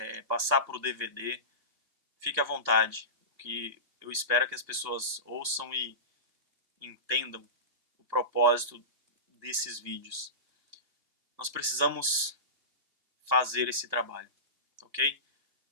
passar para o DVD, fique à vontade. O que eu espero é que as pessoas ouçam e entendam o propósito desses vídeos. Nós precisamos fazer esse trabalho, ok?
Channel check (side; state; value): left; late; 2.8 ms